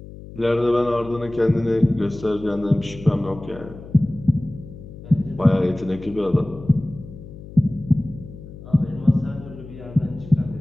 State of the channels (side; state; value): left; noise; hum, 15 dB below the sound